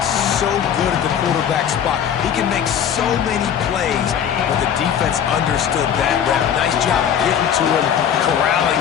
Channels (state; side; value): quieter; right; 8.7 dB